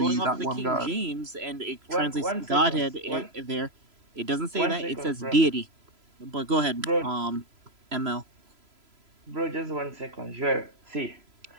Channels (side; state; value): left; late; 3.0 ms